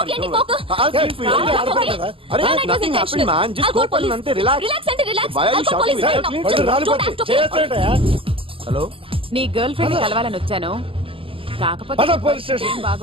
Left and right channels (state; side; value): late; left; 0.26 ms